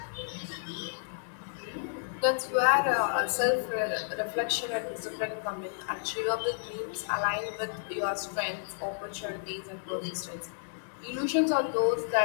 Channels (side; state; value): right; silent; digital silence